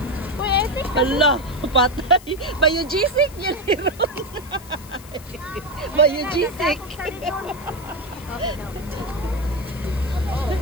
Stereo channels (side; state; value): left; noise; hiss, 20 dB below the sound